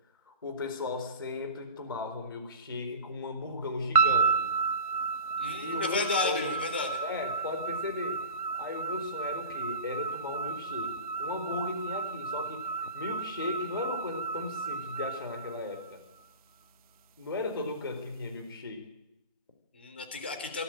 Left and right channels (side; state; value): both; inverted; correlation -0.34